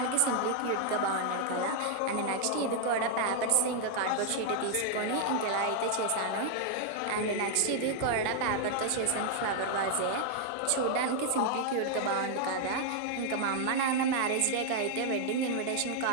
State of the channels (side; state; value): both; different; correlation 0.00